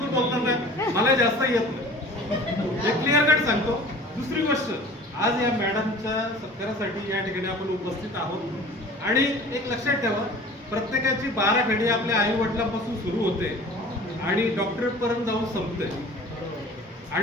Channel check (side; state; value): both; normal; correlation 0.44